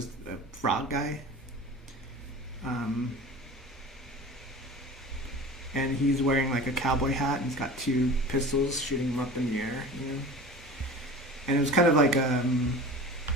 a frog guy, and he's wearing like a cowboy hat, and he's got two pistols shooting him up in the air, and it was kind of like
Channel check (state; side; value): normal; both; correlation 0.37